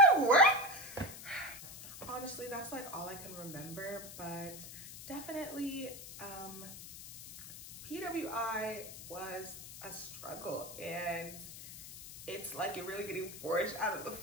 how I work? Honestly, that's like all I can remember, but definitely PWI was a struggle, and it's like you're really getting forged out of the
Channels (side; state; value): left; noise; hiss, 13 dB below the sound